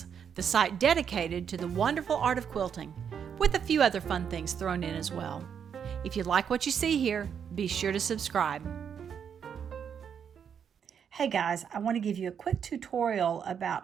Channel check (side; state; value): left; quieter; 7.7 dB